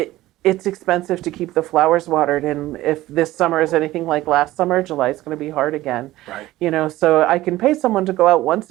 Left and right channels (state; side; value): quieter; left; 16.4 dB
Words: It's expensive to keep the flowers watered, and if this summer is anything like last summer, July is going to be hard again. Right. So I can pay someone to go out once